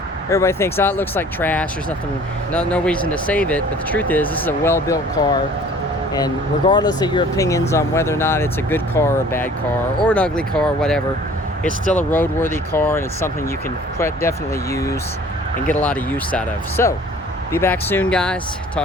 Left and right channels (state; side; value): normal; both; correlation 0.50